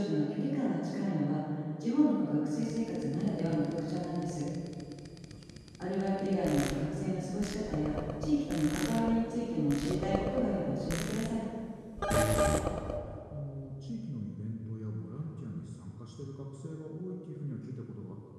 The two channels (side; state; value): both; identical; correlation 1.00